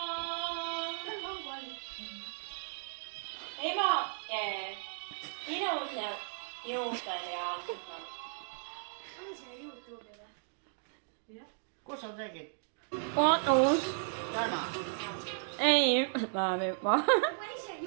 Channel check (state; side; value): silent; left; digital silence